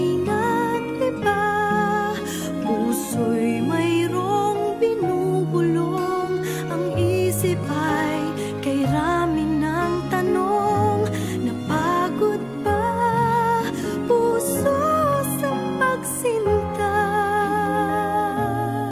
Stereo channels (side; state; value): right; noise; rumble, 26 dB below the sound